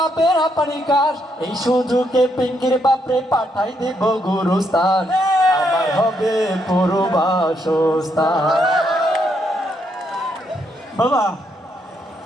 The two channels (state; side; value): normal; both; correlation 0.76